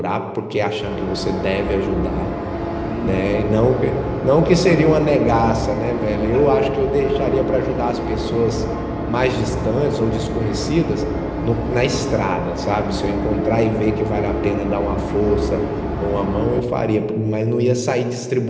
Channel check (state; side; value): identical; both; correlation 1.00